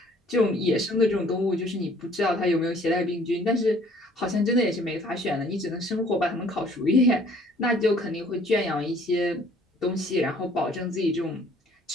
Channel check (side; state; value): both; normal; correlation 0.57